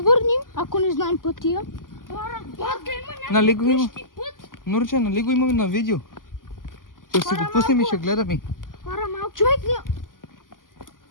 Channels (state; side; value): late; right; 0.90 ms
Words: ако не знаем пътя. хора, Батка има Нали го има? някакъв път. Нурче, нали го имаме на видео? Ще си го пуснем и ще гледаме. хора, малко. Човек не...